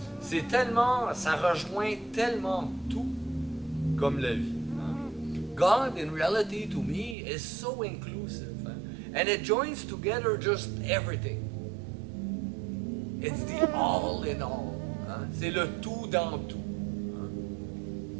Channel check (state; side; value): drops out; left; at 7.2 s